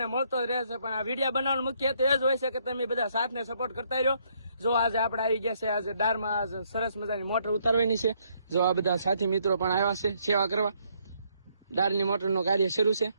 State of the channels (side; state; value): both; inverted; correlation -0.71